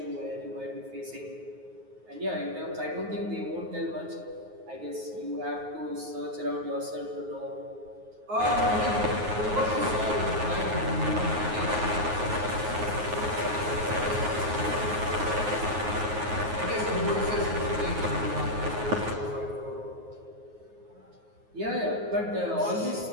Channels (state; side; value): late; left; 9.4 ms